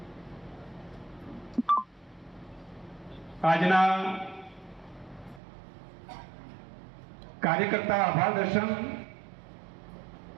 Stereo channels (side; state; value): left; drops out; at 5.4 s